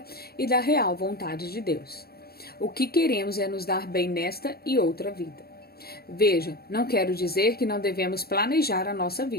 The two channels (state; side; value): late; right; 0.45 ms